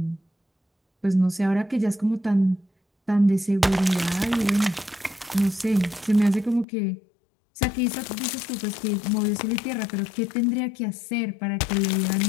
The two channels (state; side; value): drops out; right; at 6.7 s